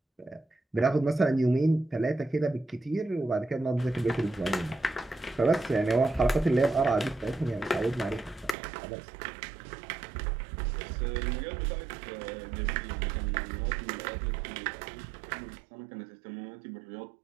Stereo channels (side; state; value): left; drops out; at 8.6 s